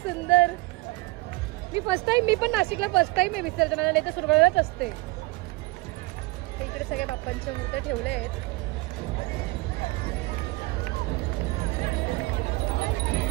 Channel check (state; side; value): quieter; left; 22.1 dB